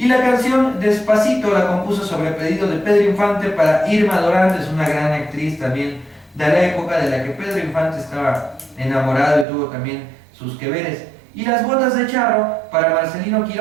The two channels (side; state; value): left; drops out; at 9.5 s